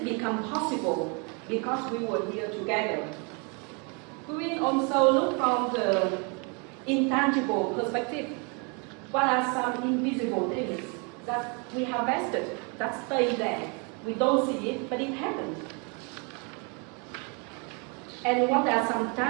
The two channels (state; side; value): quieter; left; 34.2 dB